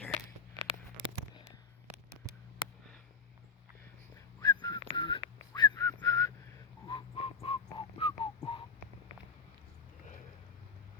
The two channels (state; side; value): quieter; right; 6.0 dB